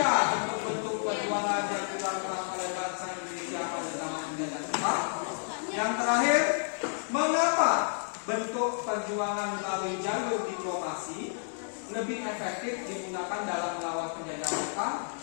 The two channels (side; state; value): right; silent; digital silence